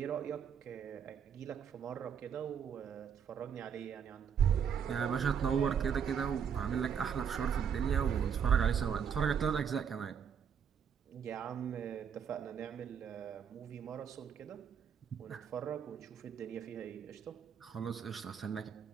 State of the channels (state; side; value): quieter; left; 7.6 dB